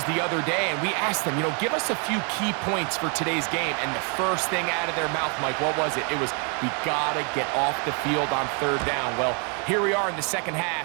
the other day, and we asked them, give us a few key points for today's game. And the first thing out of their mouth, Mike, what was it? It was, we got to get off the field on third down. Well, here we are in the second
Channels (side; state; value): left; quieter; 37.3 dB